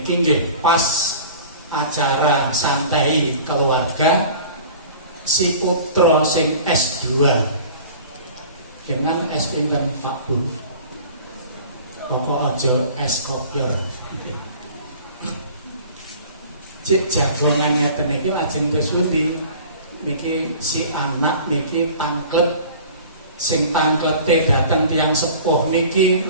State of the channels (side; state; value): both; inverted; correlation -0.43